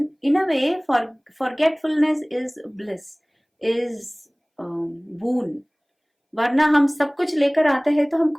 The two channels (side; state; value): both; identical; correlation 1.00